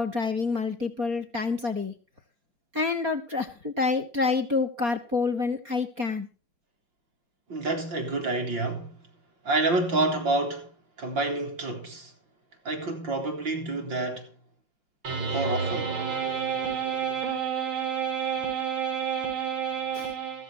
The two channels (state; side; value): late; left; 4.3 ms